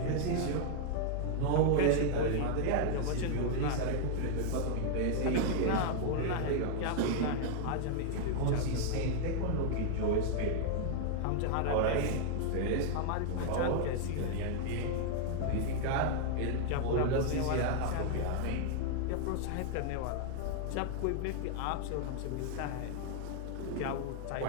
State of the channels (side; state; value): both; different; correlation 0.00